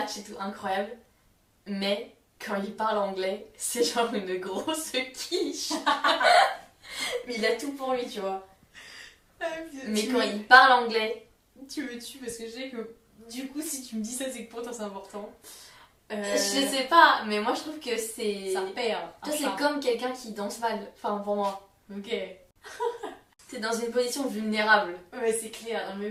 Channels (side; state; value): both; identical; correlation 1.00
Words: et tout, incroyable. Mais quand il parle anglais, c'est genre une grosse quiche. Mais il a tout pour lui, tu vois. Mais quand il parle anglais... Tu me tues parce que je sais que du coup, si tu me dis ça, c'est que pour toi c'est important. Je sais pas, mais moi je trouve que c'est... Ça perd. Toi, c'est comme quelqu'un qui danse mal. Enfin, pour moi. Ok. T'es dans une position vulnérable. Ouais, c'est clair. Non, mais